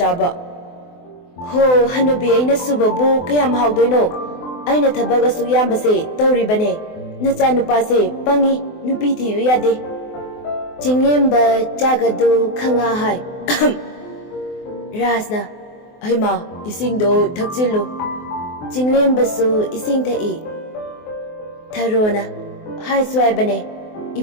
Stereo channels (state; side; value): late; right; 24 ms